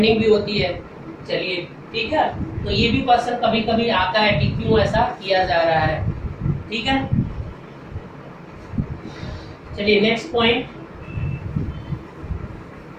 भी होती है। चलिए ठीक है, तो ये भी क्वेश्चन कभी कभी आता है कि क्यों ऐसा किया जा रहा है। ठीक है, चलिए नेक्स्ट पॉइंट।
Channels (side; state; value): both; identical; correlation 1.00